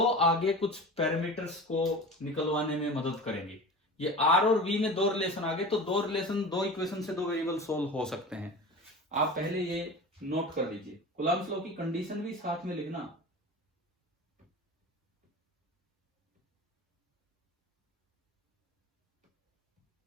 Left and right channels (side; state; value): both; normal; correlation 0.33